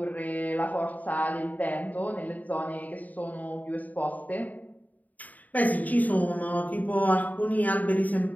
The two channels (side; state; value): right; late; 0.077 ms